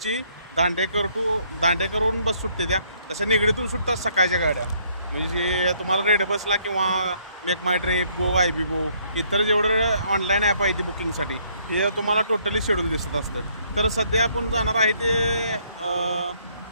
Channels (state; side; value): inverted; both; correlation -0.66